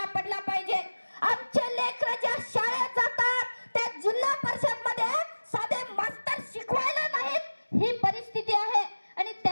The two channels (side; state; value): both; inverted; correlation -1.00